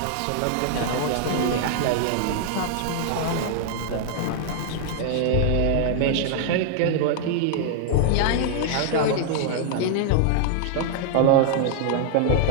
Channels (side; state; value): both; different; correlation 0.00